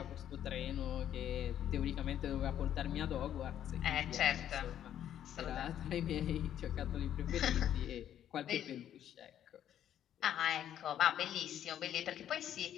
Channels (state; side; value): quieter; right; 10.6 dB